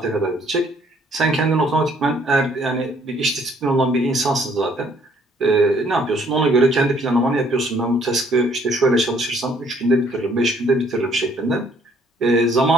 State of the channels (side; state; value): both; normal; correlation 0.63